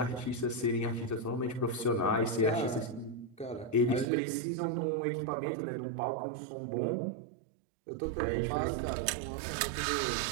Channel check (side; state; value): left; drops out; at 4.0 s